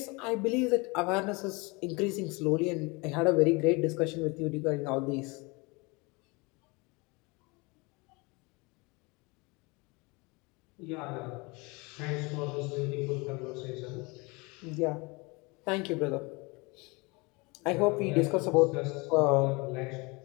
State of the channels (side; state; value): right; quieter; 27.0 dB